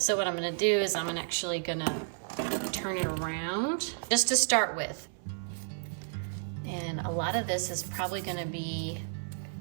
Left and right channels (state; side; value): silent; left; 56 dB below the other